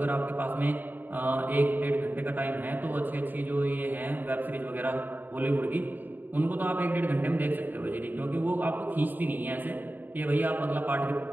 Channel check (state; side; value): late; left; 0.089 ms